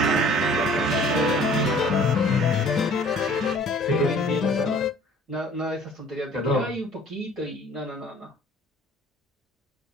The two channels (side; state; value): both; normal; correlation 0.51